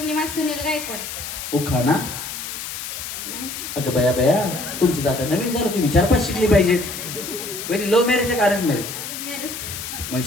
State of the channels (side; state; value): left; noise; hiss, 7 dB below the sound